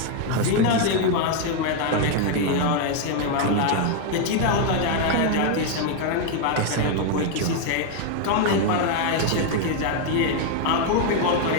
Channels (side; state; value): both; different; correlation 0.01